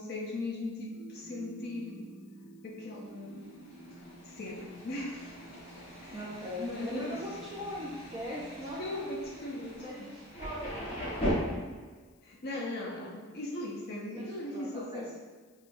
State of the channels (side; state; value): left; noise; hiss, 30 dB below the sound